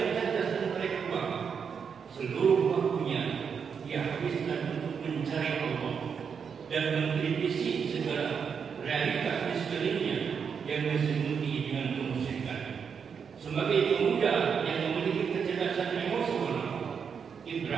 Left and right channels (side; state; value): left; quieter; 6.6 dB